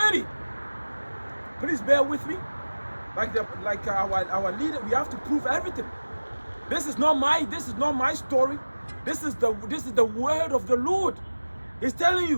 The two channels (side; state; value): both; inverted; correlation -1.00